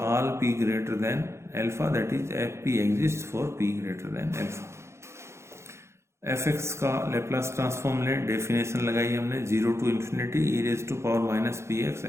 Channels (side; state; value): left; late; 0.13 ms